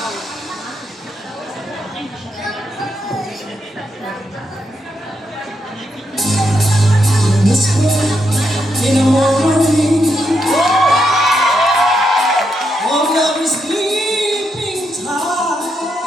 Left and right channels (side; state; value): both; normal; correlation 0.81